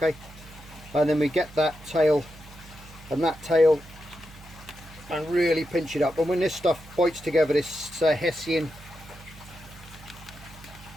And then we get that tail and that tail and really pinch it up, and when this stuff bites together, this Hessian,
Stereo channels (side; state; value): right; noise; hum, 19 dB below the sound